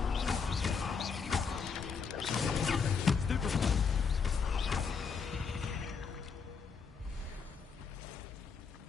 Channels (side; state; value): right; quieter; 5.7 dB